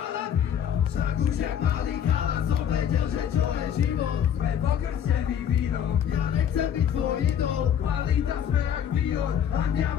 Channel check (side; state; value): right; quieter; 9.0 dB